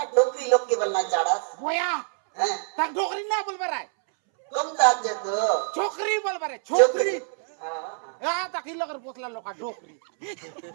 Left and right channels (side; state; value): left; silent; 61 dB below the other